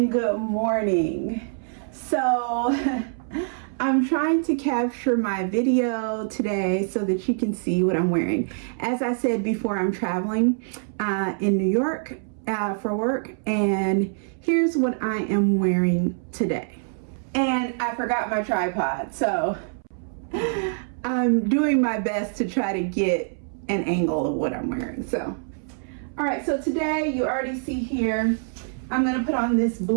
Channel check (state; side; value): silent; left; 62 dB below the other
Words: good morning. So I'm trying to capture my video today so that you can see what I'm wearing. As I said before, I'm traveling in New York for work, and here's what I am wearing today. And I forgot my tripod, so I'm doing my best to try to get an angle of what I'm wearing. So, all right, so today you already see here, I'm gonna put on this